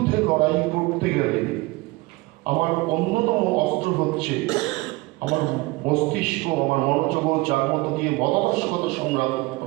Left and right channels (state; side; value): quieter; left; 22.6 dB